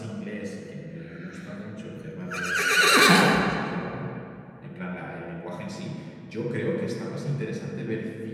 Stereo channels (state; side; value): identical; both; correlation 1.00